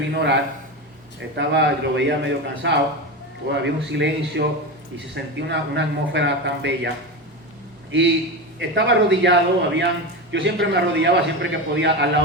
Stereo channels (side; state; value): both; normal; correlation 0.20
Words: a orar, lo veía medio cansado, había un silencio y se sentía una atmósfera tan bella. Y estaba arrodillado, yo siempre me arrodillaba siempre que podía al